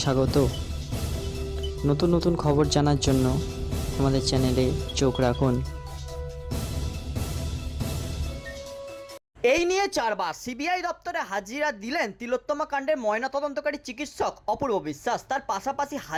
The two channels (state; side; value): identical; both; correlation 1.00